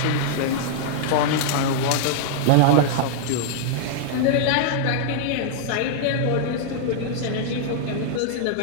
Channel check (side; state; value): both; different; correlation -0.01